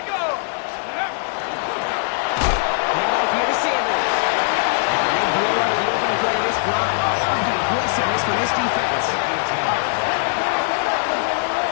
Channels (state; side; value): silent; right; digital silence